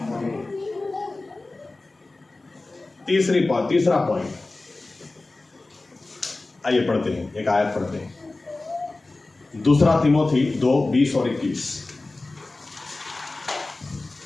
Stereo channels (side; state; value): right; quieter; 3.2 dB